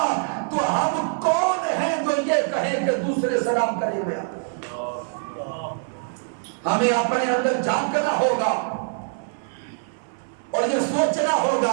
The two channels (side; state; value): left; silent; 59 dB below the other